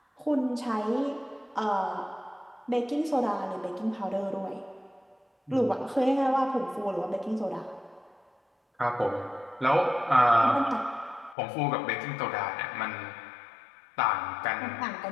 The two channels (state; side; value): drops out; right; at 11.4 s